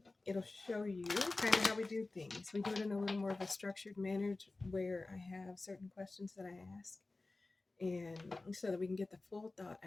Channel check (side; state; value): right; quieter; 3.2 dB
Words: it'll show you kind of how we do things. We do it in a little more of a structured manner where I have certain questions that I ask, and so that we can get the full thought